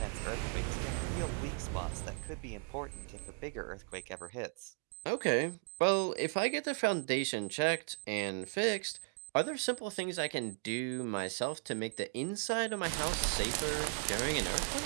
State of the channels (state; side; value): quieter; left; 35.7 dB